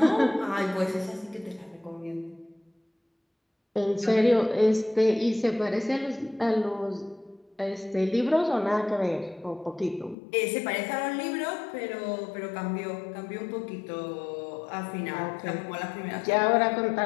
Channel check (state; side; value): drops out; right; at 10.2 s